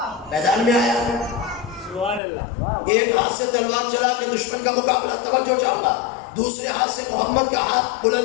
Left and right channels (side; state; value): right; drops out; at 2.2 s